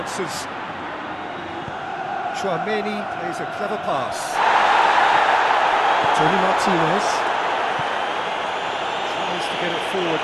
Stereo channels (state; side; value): identical; both; correlation 1.00